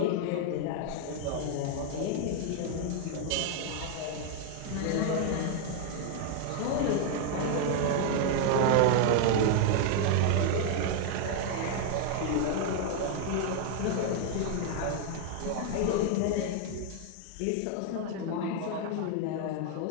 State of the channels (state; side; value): different; both; correlation 0.00